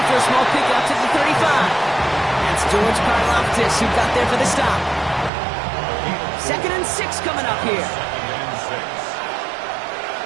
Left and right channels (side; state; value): left; drops out; at 5.3 s